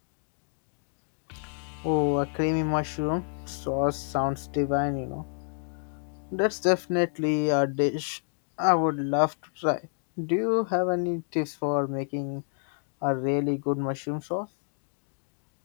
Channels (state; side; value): silent; right; digital silence